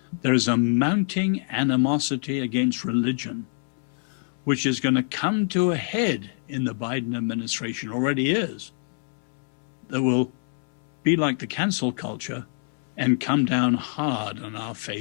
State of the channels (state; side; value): silent; right; 61 dB below the other